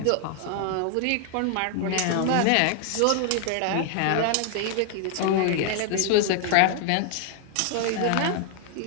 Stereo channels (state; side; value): different; both; correlation 0.00